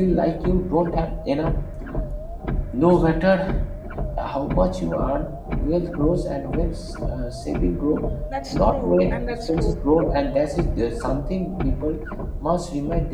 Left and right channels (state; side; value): identical; both; correlation 1.00